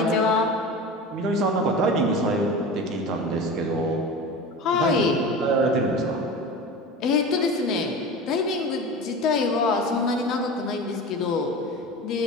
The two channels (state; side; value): normal; both; correlation 0.31